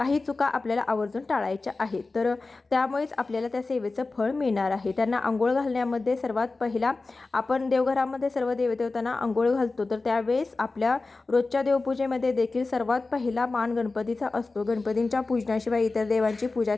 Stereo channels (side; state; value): right; quieter; 3.6 dB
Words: चुका आपल्याला आवर्जून टाळायच्या आहेत. तर त्यामुळेच आपल्याला त्या सेवेचं फळ मिळणार आहे. त्यांना आंघोळ घालण्यामध्ये सर्वात पहिला आपण देवघरामध्ये सर्व देवदेवतांना आंघोळ घालतो, तर त्यावेळेस आपल्या रोजच्या देवपूजेमध्ये देखील सर्वात पहिला मान गणपतीचा असतो. गणपतींच्या पूजनाशिवाय इतर देवांची पूजा